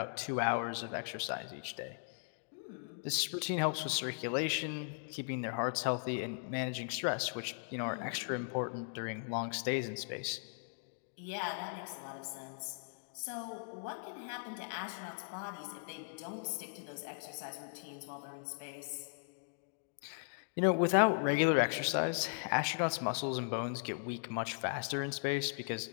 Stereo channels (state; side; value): silent; right; digital silence